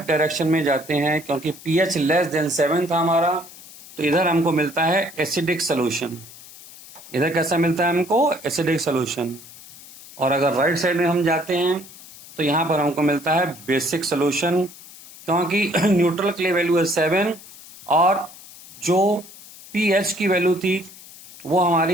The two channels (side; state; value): left; noise; hiss, 19 dB below the sound